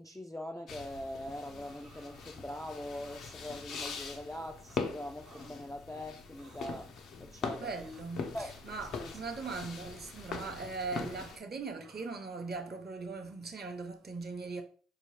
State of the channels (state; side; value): normal; both; correlation 0.59